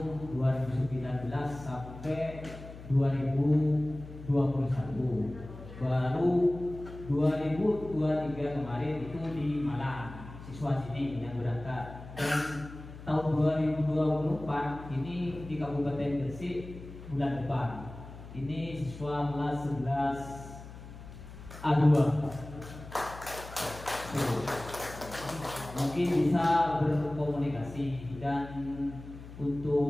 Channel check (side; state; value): left; noise; hum, 14 dB below the sound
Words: 2019 sampai 2021 baru 2023 kemarin itu di Malang siswa sini yang berangkat, dan tahun 2024 ini di Kabupaten Gresik bulan depan ini siswa kelas 11 A2. Mungkin bisa berkomunikasi, dan